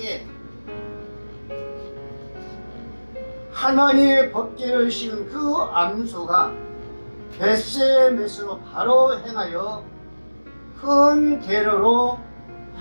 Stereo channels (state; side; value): inverted; both; correlation -1.00